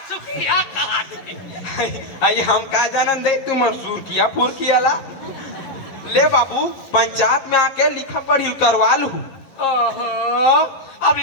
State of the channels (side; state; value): right; late; 11 ms